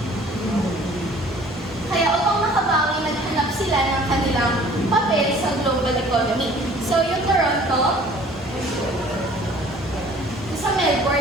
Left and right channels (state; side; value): normal; both; correlation 0.52